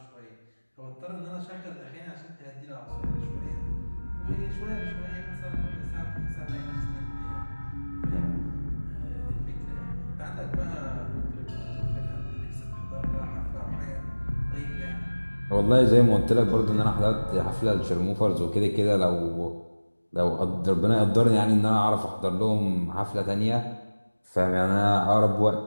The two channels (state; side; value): inverted; both; correlation -1.00